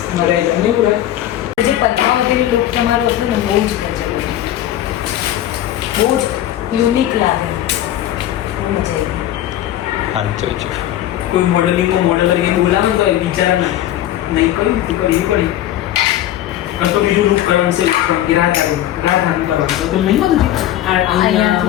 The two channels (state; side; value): quieter; right; 12.7 dB